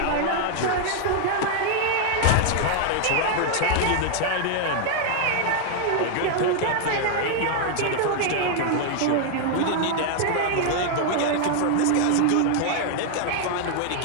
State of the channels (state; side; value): different; both; correlation 0.00